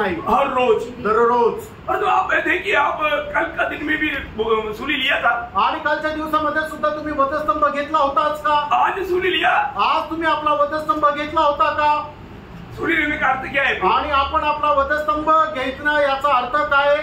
हर रोज दररोज। और तो आप देखिए, आप कल का दिन में भी सूर्य लिया था, आणि कालच्या दिवसामध्ये सुद्धा तुम्ही वधस्तंभ घेतला होताच का? आज सूर्य लिया, आज तुम्ही आपला वधस्तंभ घेतला होता का? सूर्य लेने का अर्थ क्या है? आणि आपण आपला वधस्तंभ घेतला याचा अर्थ काय?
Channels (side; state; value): both; identical; correlation 1.00